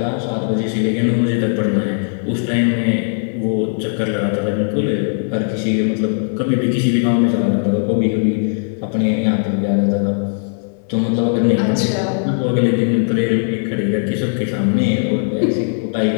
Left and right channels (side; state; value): right; silent; digital silence